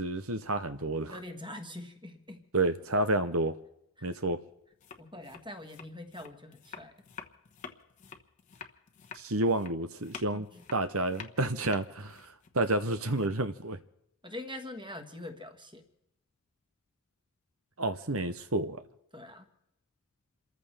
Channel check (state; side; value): normal; both; correlation -0.13